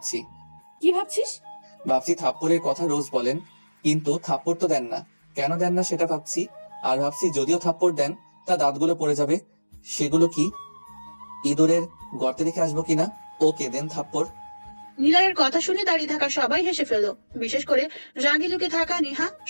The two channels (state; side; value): inverted; both; correlation -1.00